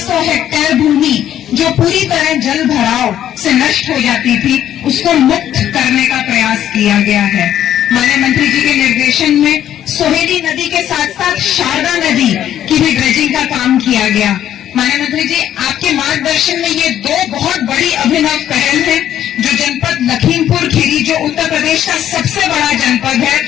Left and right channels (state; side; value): quieter; right; 11.1 dB